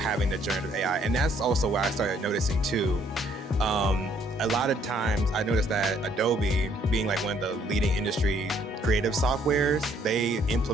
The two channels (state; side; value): normal; both; correlation 0.65